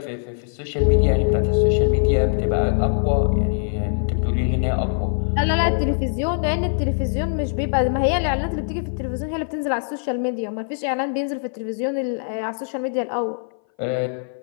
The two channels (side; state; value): right; silent; 59 dB below the other